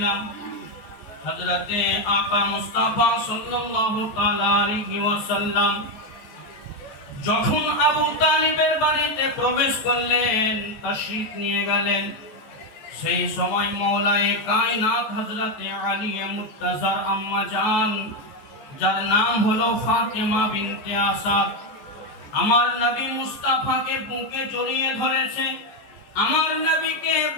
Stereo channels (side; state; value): right; late; 14 ms